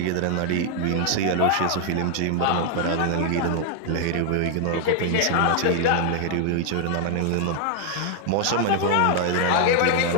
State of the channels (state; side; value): different; both; correlation 0.00